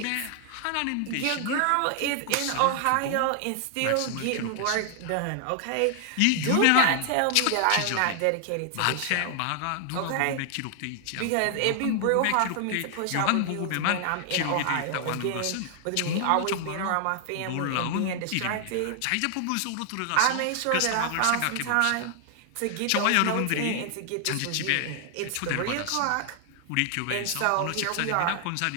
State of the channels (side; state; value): both; different; correlation 0.00